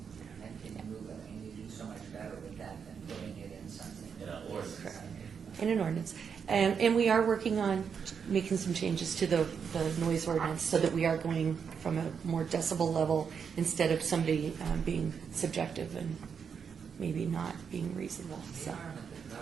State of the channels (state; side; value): quieter; left; 6.7 dB